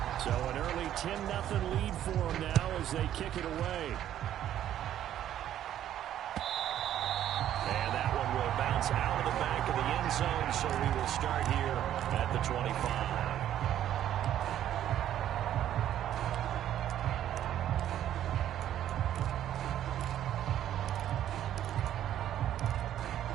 So an early 10-0 lead for them now as they kick it away. And that one will bounce out of the back of the end zone, so we will start here at the 25.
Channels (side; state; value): left; quieter; 11.4 dB